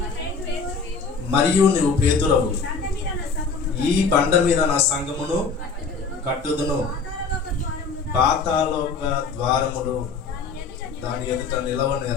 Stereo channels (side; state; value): right; quieter; 4.8 dB